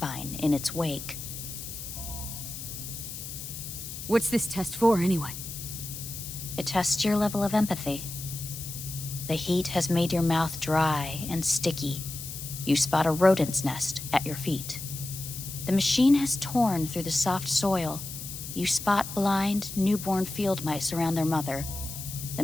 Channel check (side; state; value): left; noise; hiss, 9 dB below the sound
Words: in its wake. What's this test for, anyway? It tests your level of empathy. The heat has made your mouth dry and sticky. You spot a rodent's nest at your feet. The machine has torn through the soft soil. You spot blind, newborn field mice around their mother. The